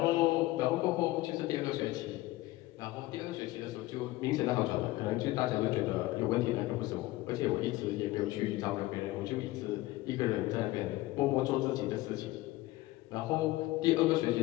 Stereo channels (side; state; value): right; quieter; 18.5 dB